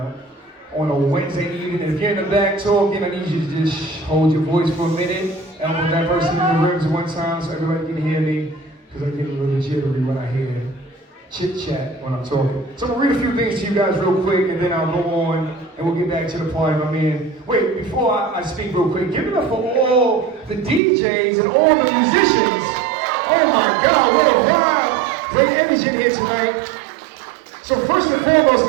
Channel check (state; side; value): drops out; left; at 20.8 s